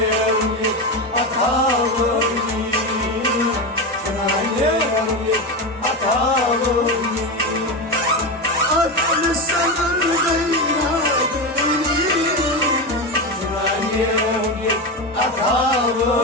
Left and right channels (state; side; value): normal; both; correlation 0.17